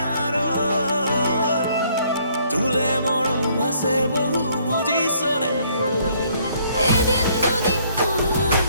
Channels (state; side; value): inverted; both; correlation -0.65